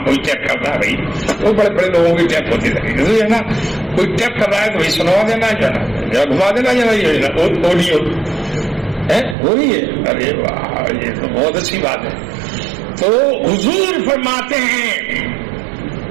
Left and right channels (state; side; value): drops out; left; at 9.3 s